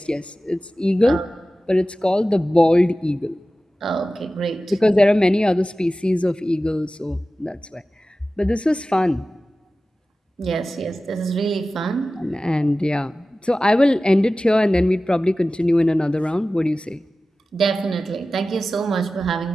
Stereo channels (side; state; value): both; normal; correlation 0.96